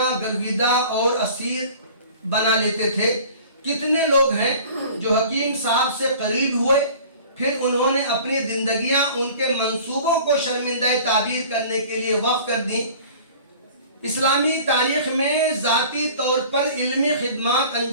गर्विदा और असीर बना लेते थे। कितने लोग हैं जो हकीम साहब से करीब हुए, फिर उन्होंने अपनी जिंदगियां उनके मंसूबों को शर्मिंदा ताबीर करने के लिए वक्फ कर दी। इस्लामी तारीख में ज़ाती तौर पर इल्मी खिदमत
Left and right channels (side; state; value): both; inverted; correlation -0.45